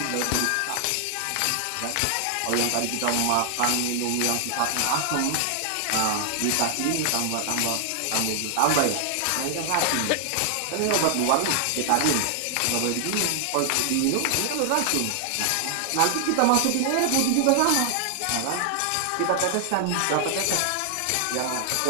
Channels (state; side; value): different; both; correlation 0.00